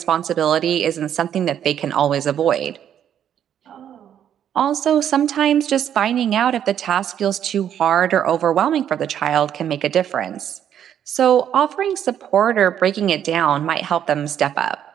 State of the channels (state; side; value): quieter; left; 9.7 dB